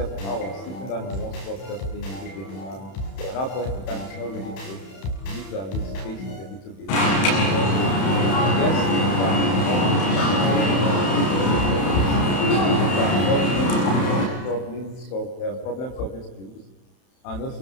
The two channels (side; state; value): right; late; 31 ms